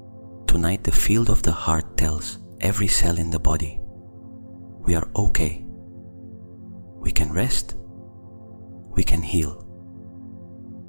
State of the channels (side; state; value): both; inverted; correlation -1.00